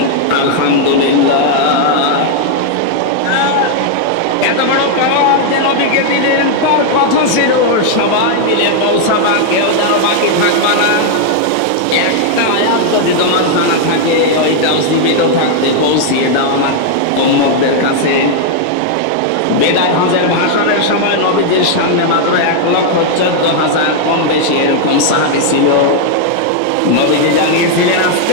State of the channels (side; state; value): both; different; correlation 0.00